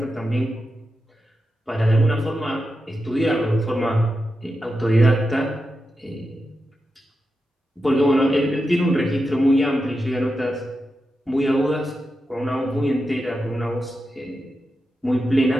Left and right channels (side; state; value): both; normal; correlation 0.89